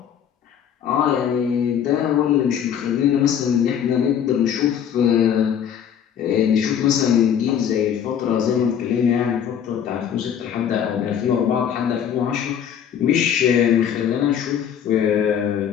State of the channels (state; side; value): quieter; right; 8.8 dB